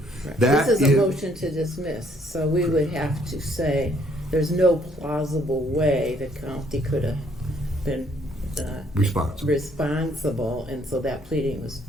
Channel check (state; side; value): normal; both; correlation 0.66